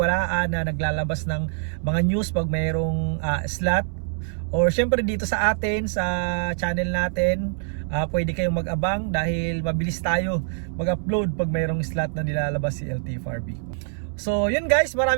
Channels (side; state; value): left; silent; 62 dB below the other